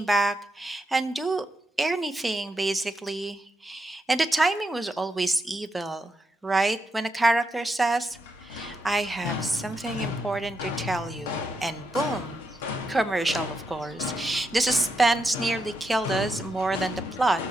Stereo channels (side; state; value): both; normal; correlation 0.83